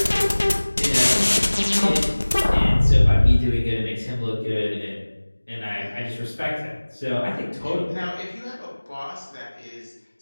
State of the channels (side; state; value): both; inverted; correlation -1.00